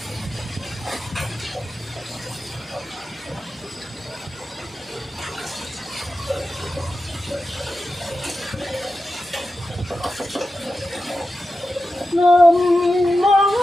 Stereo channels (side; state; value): both; normal; correlation 0.91